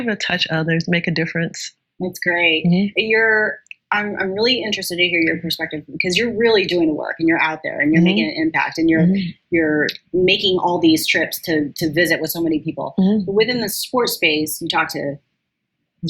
to touch others, make a difference. That's great. I'm really interested to hear your perspective because you're really doing the work and you're out there and you're making an impact and you're making all these trips to visit with so many people. But within the sports space, you talk to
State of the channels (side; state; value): both; identical; correlation 1.00